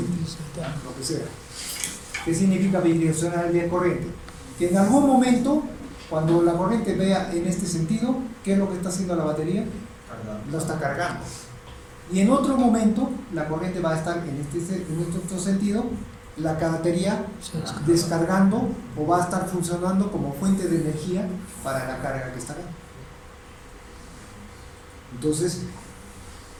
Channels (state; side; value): identical; both; correlation 1.00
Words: lo que sea. ¿Qué significa bidireccionalidad de corriente? Que en algún momento, cuando la corriente vea en este sentido, ¿qué es lo que está haciendo la batería? Lo está cargando. Y en otro momento, la corriente va a estar en este otro sentido, la batería descargando o va a estar funcionando como fuente de energía para la carga que está acá. Entonces,